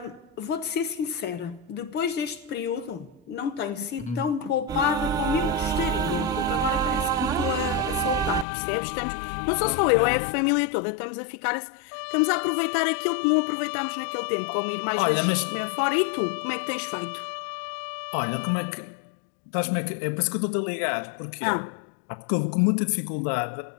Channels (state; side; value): drops out; right; at 8.5 s